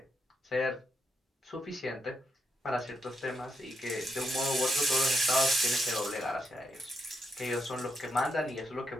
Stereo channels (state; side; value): normal; both; correlation 0.80